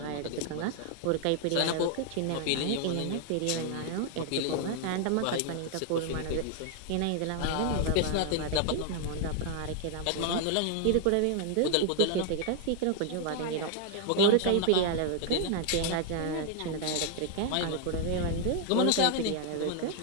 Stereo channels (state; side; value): different; both; correlation 0.00